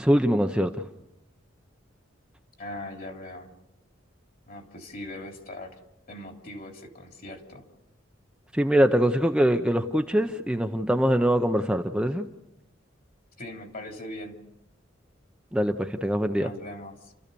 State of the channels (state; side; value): normal; both; correlation 0.88